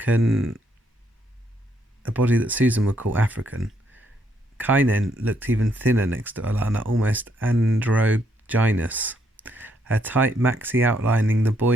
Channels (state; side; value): normal; both; correlation 0.73